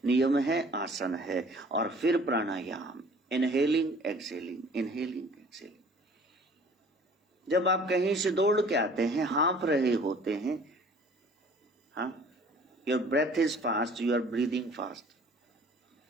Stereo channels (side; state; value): both; normal; correlation 0.51